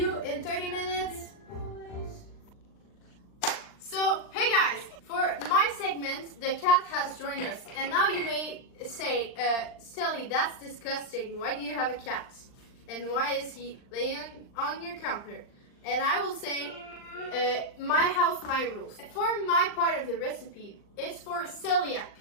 in 30 minutes. So, hey guys, for my segment, the cat has joined us. And now you may say, Stellie, that's disgusting. Why do you have a cat? And why is he laying on your counter? And I will say, my house, my rules. For my part of the recipe, it's for celiac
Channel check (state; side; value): late; right; 39 ms